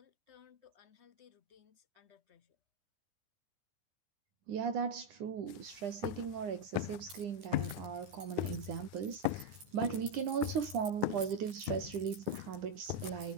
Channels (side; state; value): left; late; 9.9 ms